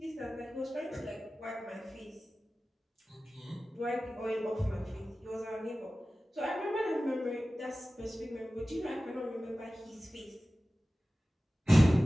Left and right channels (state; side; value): normal; both; correlation 0.96